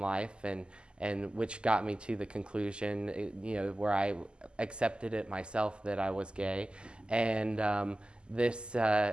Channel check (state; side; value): late; left; 0.050 ms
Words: and which got me to the conclusion, where I accepted it myself that I was gay, and I